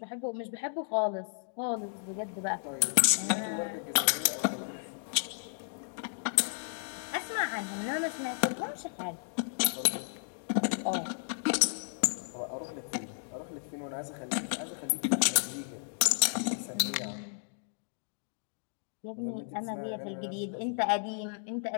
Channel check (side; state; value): right; silent; digital silence